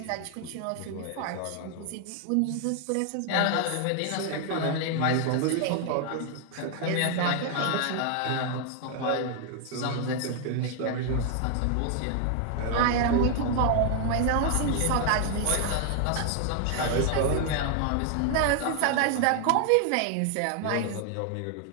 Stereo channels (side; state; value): both; different; correlation 0.00